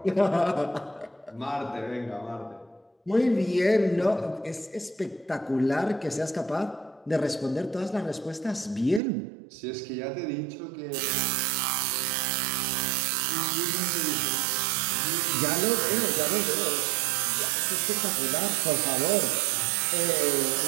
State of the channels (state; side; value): drops out; left; at 9.0 s